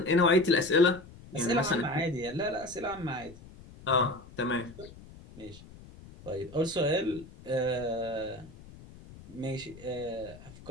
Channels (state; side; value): noise; left; rumble, 19 dB below the sound